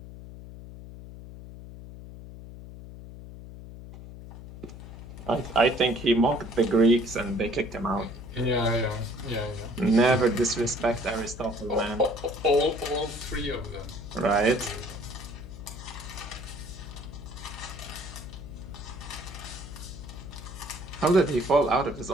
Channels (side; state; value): left; noise; hum, 13 dB below the sound